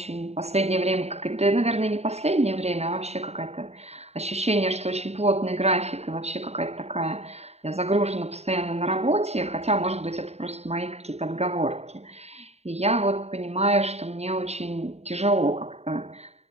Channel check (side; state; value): left; late; 0.31 ms